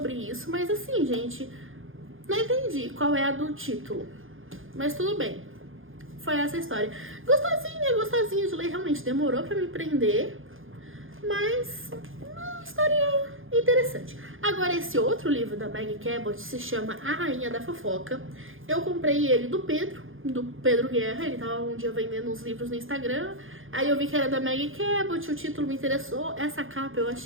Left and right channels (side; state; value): left; late; 0.59 ms